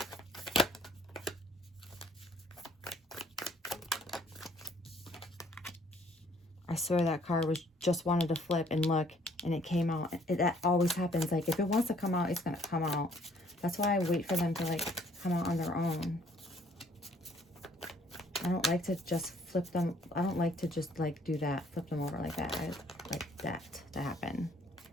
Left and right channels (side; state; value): both; normal; correlation 0.61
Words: I swear that card was just wanted to flip and look, and it came out. That always happens. Like, if it wants to come out, it's going to come out. That's why I wait for them to, like, come out on their own. I don't like to just flip them. I don't like to just, like, do that. Flip them over like that. I like that to happen.